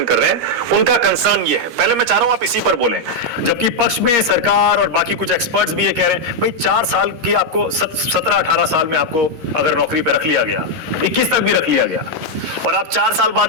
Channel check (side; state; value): left; late; 13 ms